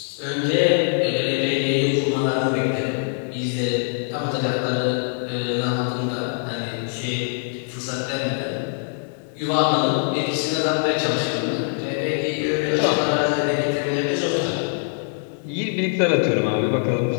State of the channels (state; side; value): silent; right; digital silence